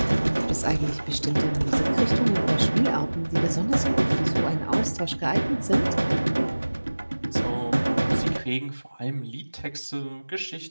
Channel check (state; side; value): inverted; both; correlation -1.00